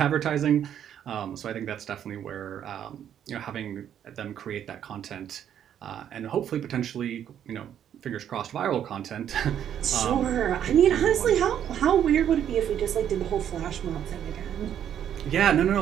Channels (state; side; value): quieter; left; 9.7 dB